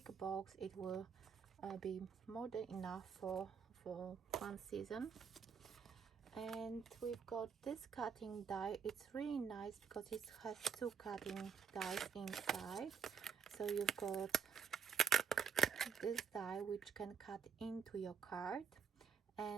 box. It will be more than enough for 1 season. And we've got this cutting die. It's really nice because it has 2 cutting dies inside. So you've got this die which can cut into your card,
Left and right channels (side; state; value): left; quieter; 6.6 dB